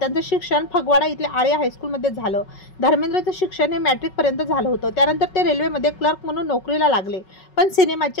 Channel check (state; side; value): late; right; 5.4 ms